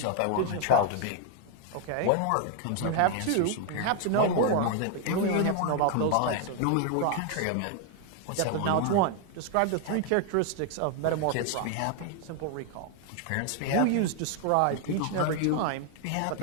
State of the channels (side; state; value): both; different; correlation 0.00